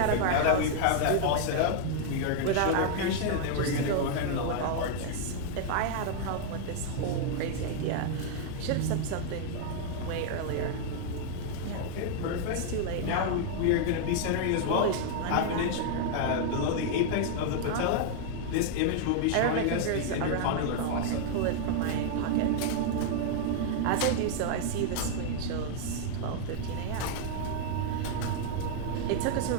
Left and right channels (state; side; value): different; both; correlation 0.00